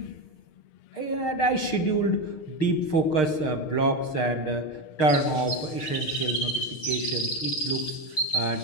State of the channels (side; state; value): right; late; 6.5 ms